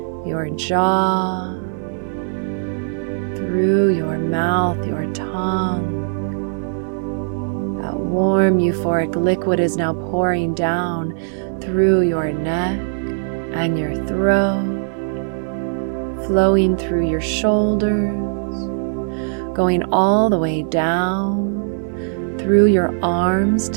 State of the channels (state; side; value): silent; left; 66 dB below the other